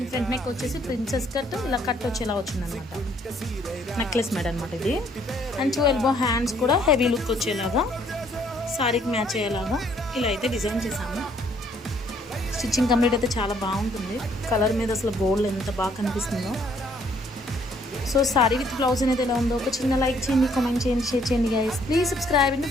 ఫ్రంట్ నెక్ వచ్చేసి ప్రిన్సెస్ కట్ ఇలా కట్ వచ్చేలా వచ్చిందనమాట. నెక్లెస్ మేడ్ అనమాట ఇది. అండ్ 2 ఎల్బో హ్యాండ్స్ కూడా హెవీ లుక్ వచ్చేలాగా సారీకి మ్యాచ్ అయ్యేలాగా ఇలా అయితే డిజైన్ చేసాము. స్టిచ్చింగ్ కంప్లీట్ అయితే చాలా బాగుంటుంది. కలర్ మీద అసలు గోల్డ్ ఎంత బాగా కనిపిస్తుందో. సో సారీ విత్ బ్లౌజ్ అనేది ఎలా ఉందో ఒక చిన్న లైక్ చేయండి, కామెంట్ చేయండి, షేర్ చేయండి guys. Please subscribe and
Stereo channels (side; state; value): both; normal; correlation 0.65